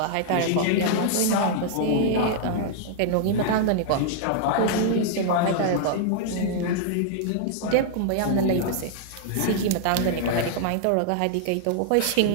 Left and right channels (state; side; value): different; both; correlation -0.01